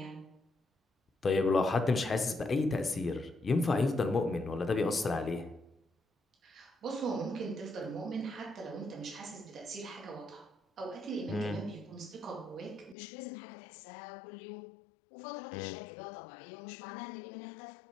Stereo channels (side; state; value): right; drops out; at 13.0 s